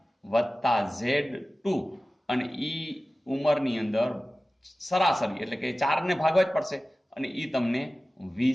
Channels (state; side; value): normal; both; correlation 0.96